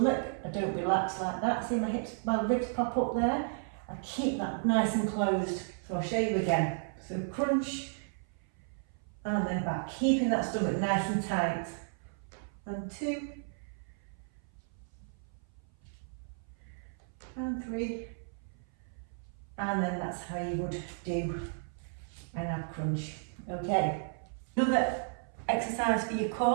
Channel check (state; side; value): silent; left; 55 dB below the other